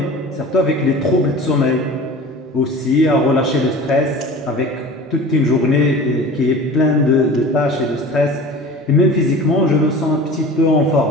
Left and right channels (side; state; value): both; normal; correlation 0.38